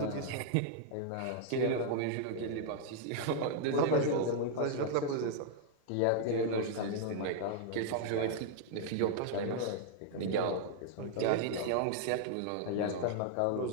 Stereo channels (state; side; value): different; both; correlation -0.01